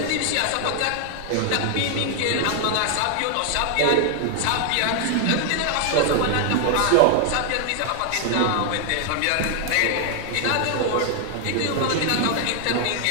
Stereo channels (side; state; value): both; different; correlation 0.00